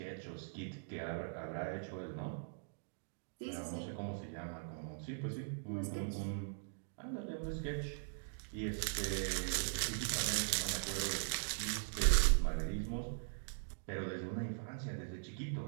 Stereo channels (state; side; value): silent; left; digital silence